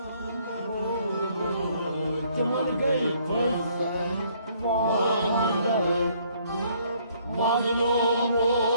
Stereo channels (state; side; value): inverted; both; correlation -0.64